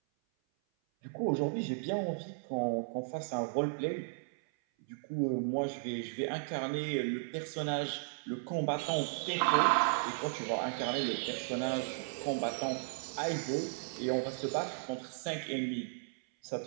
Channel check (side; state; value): left; silent; 54 dB below the other